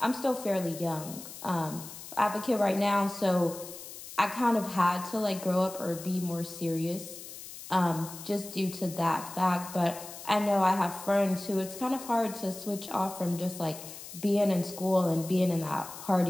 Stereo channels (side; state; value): left; noise; hiss, 13 dB below the sound